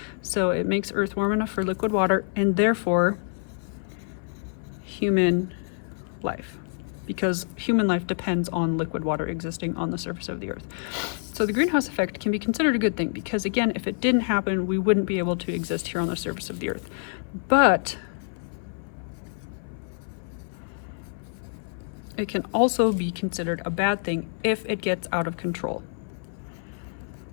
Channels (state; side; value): silent; right; 58 dB below the other